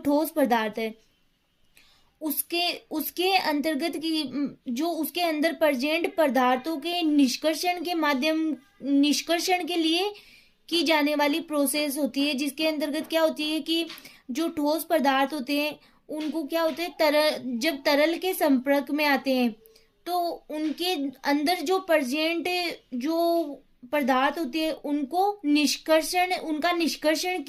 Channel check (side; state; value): both; identical; correlation 1.00